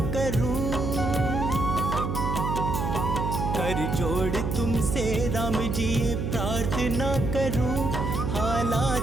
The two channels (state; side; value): noise; right; hum, 2 dB below the sound